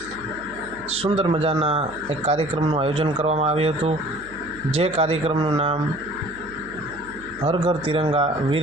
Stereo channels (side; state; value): right; noise; hum, 20 dB below the sound